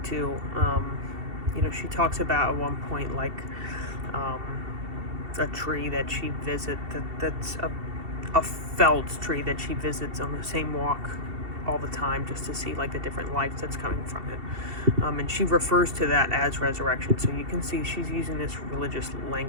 too, she talks about at one point like a tree that she visits that's a felled tree that she visits on the same walk all the time, just to see like the different life that's coming from it, and she refers to that as resurrection, so you can see she's using this religious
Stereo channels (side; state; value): left; late; 2.7 ms